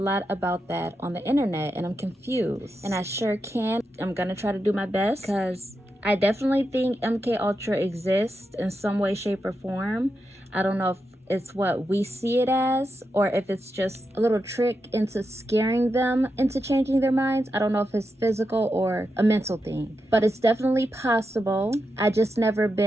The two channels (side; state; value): both; normal; correlation 0.87